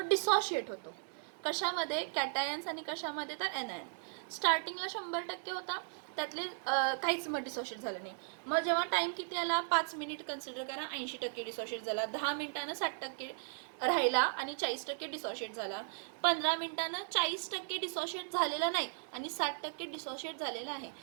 डिसोशिएट होतो. कशामध्ये, कॅटायन्स आणि कशामध्ये, तर एनायन. स्टार्टिंगला 100% होता, त्यातले काहीच मग डिसोशिएट झालं नाही. मग जेव्हा टाईम किती आला, 5 मिनिट कन्सिडर करा, 80% डिसोशिएट झाला. 10 मिनिटानं 60% राहिला आणि 40% डिसोशिएट झाला. 15 मिनिटानं 40% डिसोशिएट झालेला नाही आणि 60% डिसोशिएट झालेला आहे.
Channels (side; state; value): left; silent; digital silence